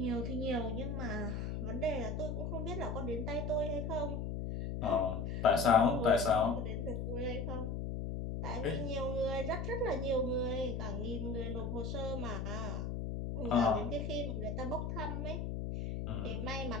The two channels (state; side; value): noise; left; hum, 3 dB below the sound